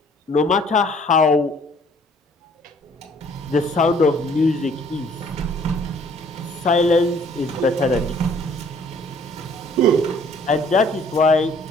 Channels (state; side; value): normal; both; correlation 0.58